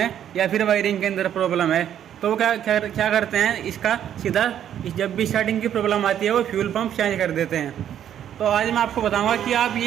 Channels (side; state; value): left; quieter; 10.1 dB